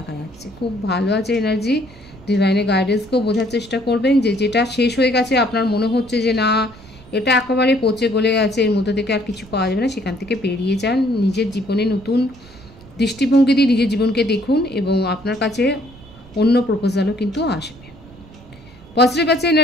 যাচ্ছে। খুব ভালো আছে এনার্জি। ডিভাইনের গাইডেন্সকেও বোঝার চেষ্টা করবেন যে যেটা শেষ হয়ে গেছে, আপনার মনে হচ্ছে যে না এটা একেবারে পচে গলে গেছে, এর মধ্যে থেকে আর কিছু পাওয়া যাবে না, সেখান থেকে পেরিয়ে যান। নিজের জীবনে নতুন দৃষ্টিভঙ্গি দিয়ে নিজের জীবনকে দেখুন এবং আপনার কাছে অন্য প্রপোজালও কিন্তু আসবে। পজিটিভ আছে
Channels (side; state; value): right; noise; rumble, 22 dB below the sound